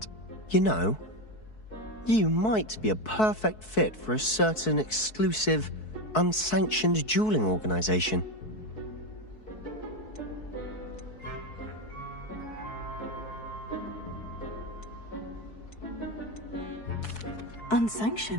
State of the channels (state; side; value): late; right; 4.6 ms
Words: You know, you might be a perfect fit for a certain exclusive, unsanctioned dueling organization.